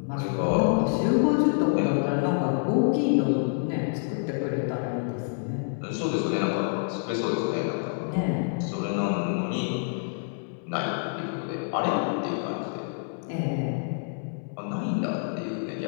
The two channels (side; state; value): right; silent; 60 dB below the other